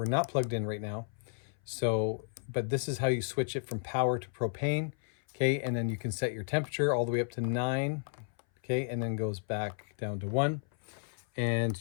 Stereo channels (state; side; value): silent; right; 56 dB below the other